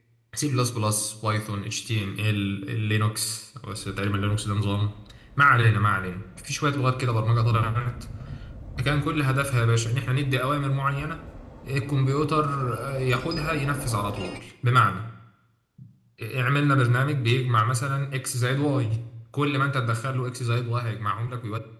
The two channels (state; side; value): identical; both; correlation 1.00